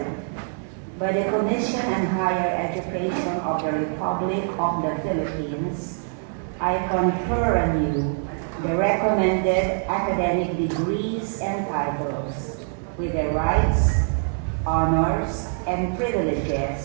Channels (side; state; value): left; silent; 62 dB below the other